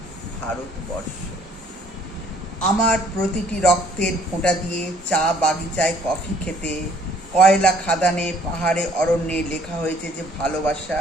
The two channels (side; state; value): both; normal; correlation 0.60